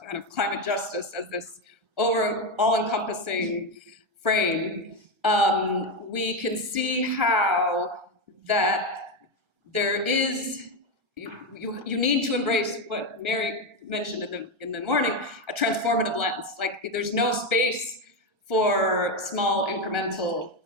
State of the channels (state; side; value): late; left; 1.3 ms